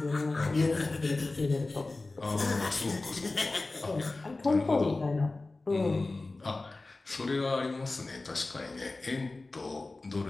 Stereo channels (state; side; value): quieter; right; 3.3 dB